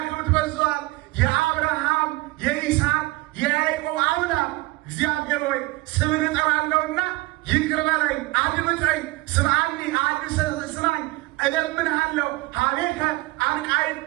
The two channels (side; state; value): left; quieter; 21.5 dB